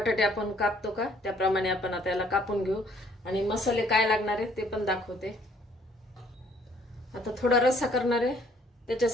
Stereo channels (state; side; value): normal; both; correlation 0.61